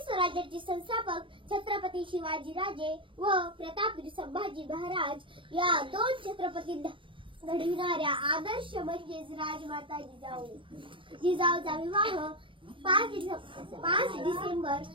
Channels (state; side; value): late; left; 0.25 ms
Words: स्वराज्याचे संस्थापक छत्रपती शिवाजीराजे व प्रतापवीर संभाजी महाराज या दोन छत्रपती घडविणाऱ्या आदर्श म्हणजेच राजमाता जिजाऊ. जिजाऊचा विवाह 5 डिसेंबर